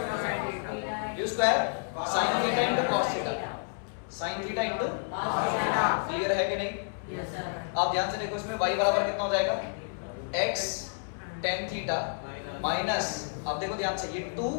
u square sin theta into cos theta, sin theta into clear है कि नहीं? Yes sir. आप ध्यान से देखो इसमें y बराबर कितना हो जाएगा? x tan थीटा माइनस, अब देखो ध्यान से, ये 2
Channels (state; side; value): silent; right; 58 dB below the other